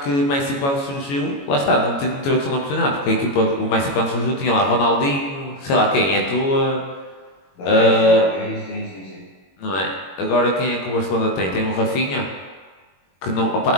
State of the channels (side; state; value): right; late; 22 ms